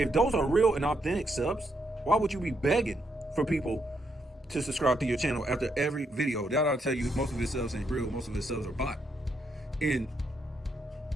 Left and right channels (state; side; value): normal; both; correlation 0.78